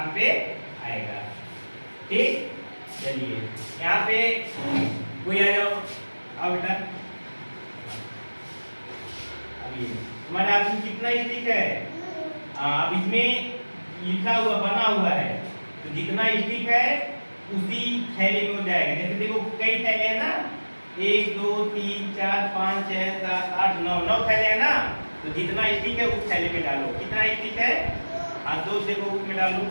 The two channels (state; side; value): inverted; both; correlation -1.00